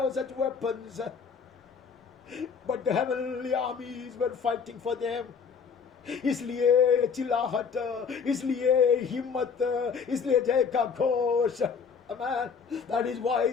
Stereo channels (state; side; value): quieter; right; 6.0 dB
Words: such weapons. But the heavenly armies were fighting for them. इसलिए चिल्लाहट, इसलिए हिम्मत, इसलिए जय का Ghosh, Amen. That is why